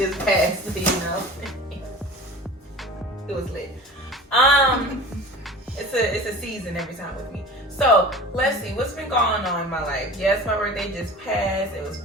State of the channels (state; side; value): normal; both; correlation 0.38